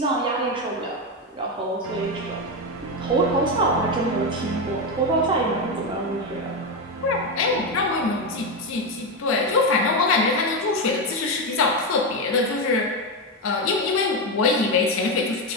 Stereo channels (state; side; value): normal; both; correlation 0.10